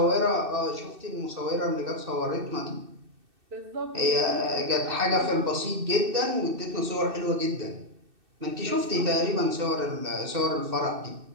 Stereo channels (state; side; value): late; left; 2.6 ms